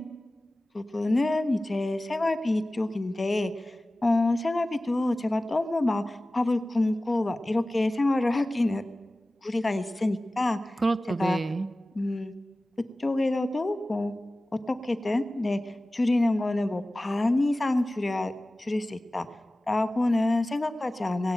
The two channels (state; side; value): normal; both; correlation 0.97